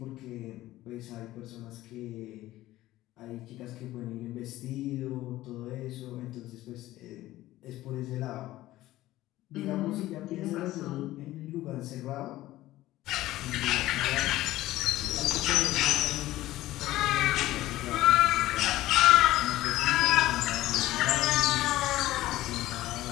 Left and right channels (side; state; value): right; quieter; 16.0 dB